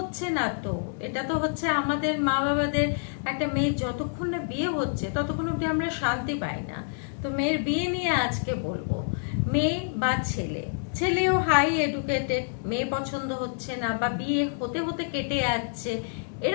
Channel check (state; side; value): silent; right; 59 dB below the other